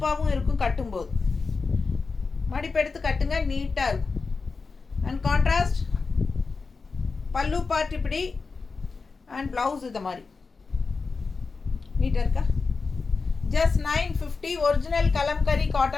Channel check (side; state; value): right; quieter; 4.4 dB